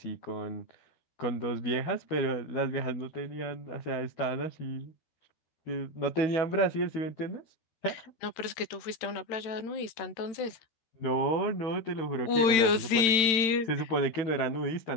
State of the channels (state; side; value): late; right; 13 ms